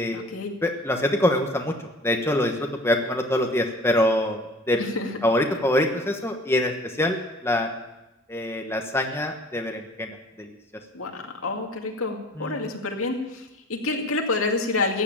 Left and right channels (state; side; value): normal; both; correlation 0.46